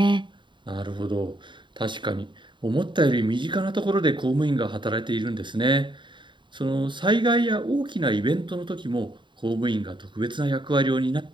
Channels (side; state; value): left; late; 0.23 ms